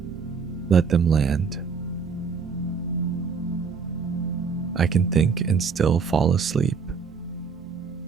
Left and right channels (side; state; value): left; quieter; 5.6 dB